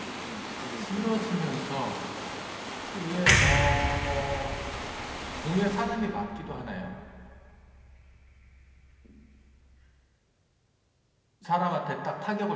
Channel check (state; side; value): identical; both; correlation 1.00